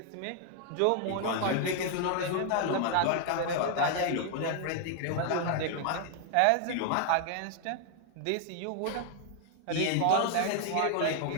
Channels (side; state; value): both; different; correlation 0.00